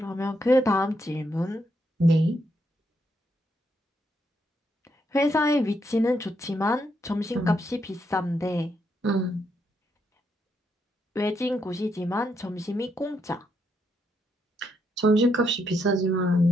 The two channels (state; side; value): normal; both; correlation 0.78